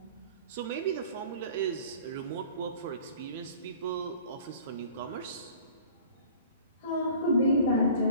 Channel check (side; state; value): both; inverted; correlation -0.46